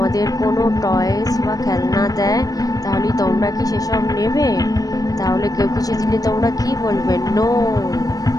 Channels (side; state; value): right; late; 0.18 ms